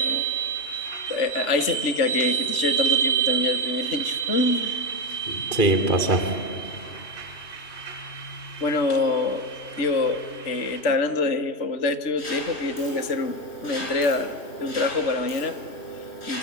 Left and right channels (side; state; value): right; late; 3.1 ms